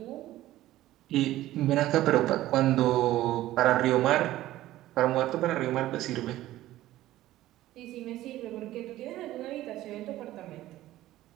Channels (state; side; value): quieter; left; 15.1 dB